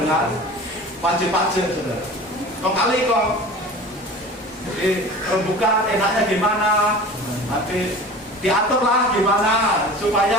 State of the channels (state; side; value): normal; both; correlation 0.38